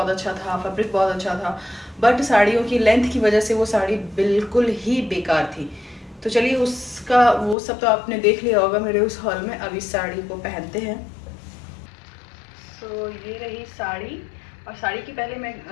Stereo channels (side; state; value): right; drops out; at 7.6 s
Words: अच्छा था, फैब्रिक बहुत अच्छा था। बट साड़ियों की लेंथ की वजह से वो साड़ी बिल्कुल ही बेकार थी। तो चलिए उसका वो सब तो आपने देख लिया होगा मेरे उस हॉल में। अब इस साड़ी को पहनते हैं। तो ये रही साड़ी। और साड़ी की पहले मैं